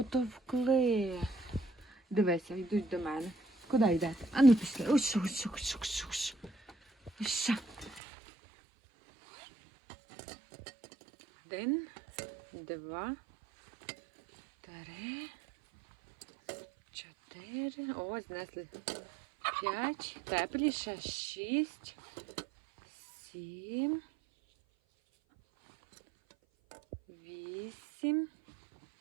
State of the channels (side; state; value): left; drops out; at 8.0 s